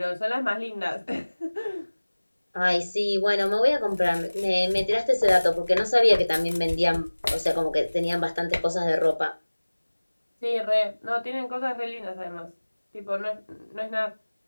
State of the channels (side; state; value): both; inverted; correlation -1.00